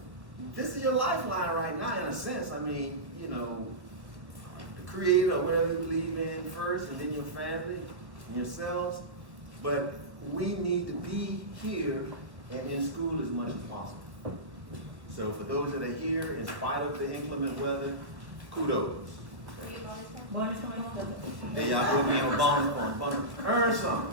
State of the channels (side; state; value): left; late; 1.7 ms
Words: is your lifeline right now, in a sense. I mean, you know, the Creator, or whatever you believe in first, and then your family and yourselves. But we need to be here and in school as much as possible. So for those that are here, in spite of the inclement weather, kudos. There y'all will be on bonus point. Earn